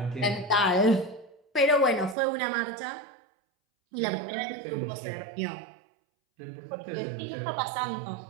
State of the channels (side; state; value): left; drops out; at 2.1 s